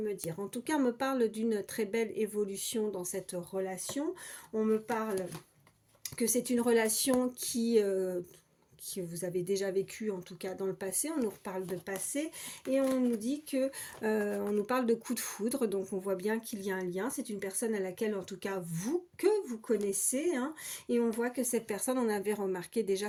dire. En tout cas, on me parle d'une très belle évolution dans cette relation. On me parle que c'est une relation que vous avez déjà vécu en tout cas dans le passé. On nous reparle de passé et on nous dit que on nous parle de coup de foudre, donc on voit bien qu'il y a un lien. C'est une personne à laquelle en tout cas vous connaissez, hein, et on voit que cette personne, on avait remarqué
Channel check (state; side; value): identical; both; correlation 1.00